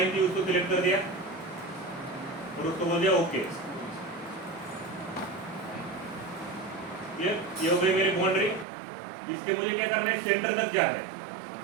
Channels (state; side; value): drops out; left; at 8.7 s